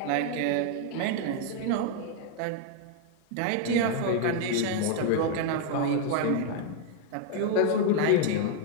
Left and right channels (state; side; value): different; both; correlation 0.00